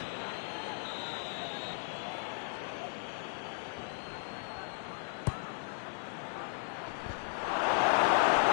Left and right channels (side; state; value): right; silent; 54 dB below the other